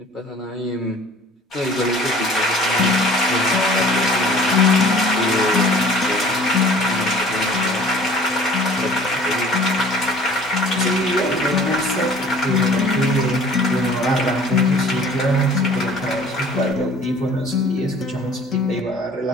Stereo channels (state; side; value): normal; both; correlation 0.49